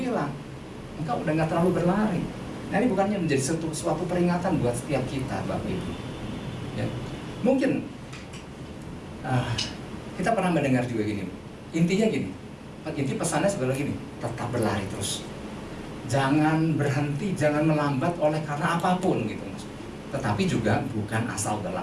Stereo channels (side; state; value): both; identical; correlation 1.00